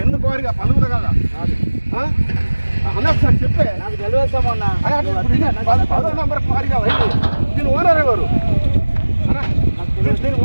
10 క్వారీగా పలువురు కదా అన్న, ఒకసారి చెప్పే. నాకు తెలియదు సంబంధం. 10 నెంబర్ క్వారీగా దీని ఓనర్ ఎవరు? దీని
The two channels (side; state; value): both; inverted; correlation -1.00